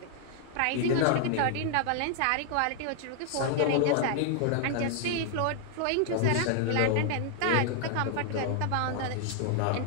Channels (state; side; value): different; both; correlation 0.00